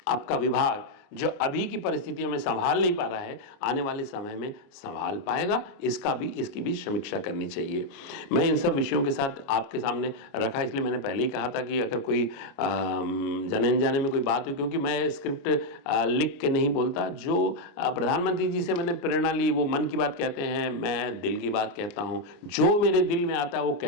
आपका विभाग जो अभी की परिस्थितियों में संभाल नहीं पा रहा है, आने वाले समय में संभाल पाएगा? इसकी भी समीक्षा करनी चाहिए। मैं इन सब विषयों के साथ आपके सामने रखा, इसलिए मैंने पहले ही कहा था कि अगर कोई जाने अनजाने में कोई बात हुई, क्योंकि मैं स्क्रिप्ट लिख के नहीं बोलता, जो प्रधानमंत्री जी से मैंने प्रेरणा ली वो मन की बात कहते हैं, मैं दिल की बात कहता हूँ, जो मेरे दिल में आता है वो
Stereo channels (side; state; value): right; late; 29 ms